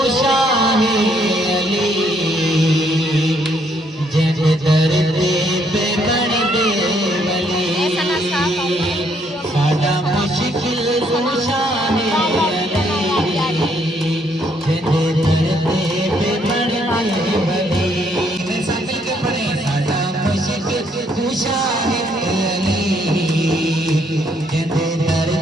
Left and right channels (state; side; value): normal; both; correlation 0.70